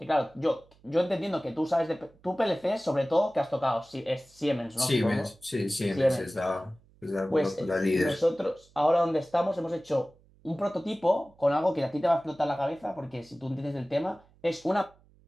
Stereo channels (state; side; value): noise; right; hum, 30 dB below the sound